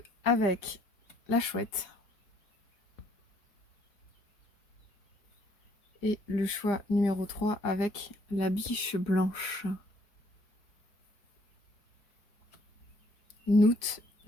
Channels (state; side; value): late; right; 4.6 ms